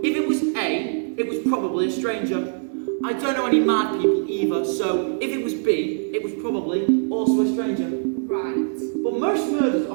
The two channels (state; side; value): silent; left; digital silence